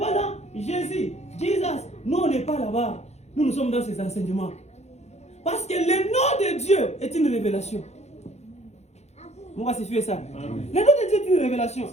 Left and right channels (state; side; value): late; right; 0.32 ms